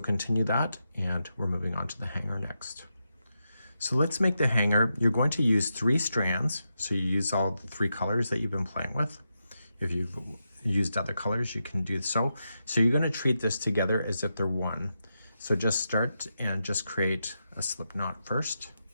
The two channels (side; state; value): both; inverted; correlation -0.87